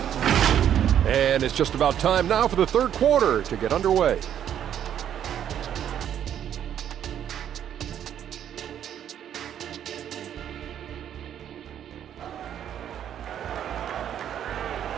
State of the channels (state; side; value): quieter; left; 9.9 dB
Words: And it's just about time now for the third quarter to get underway.